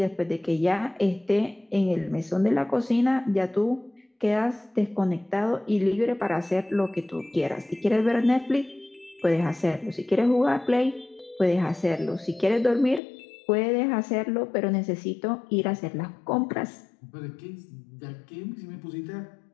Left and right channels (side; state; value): right; drops out; at 13.0 s